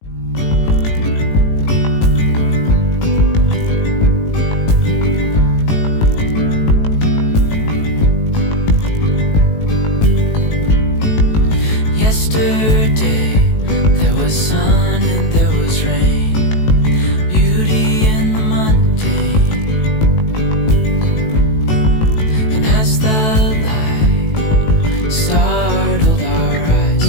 Yesterday there was sun and there was rain, beauty in the mundane. And as the light startled our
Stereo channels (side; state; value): right; late; 18 ms